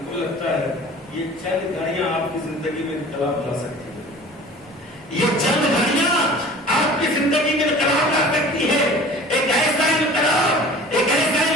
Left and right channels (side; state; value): both; normal; correlation 0.44